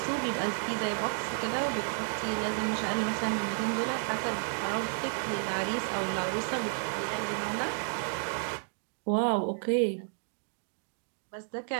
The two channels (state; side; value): silent; left; 57 dB below the other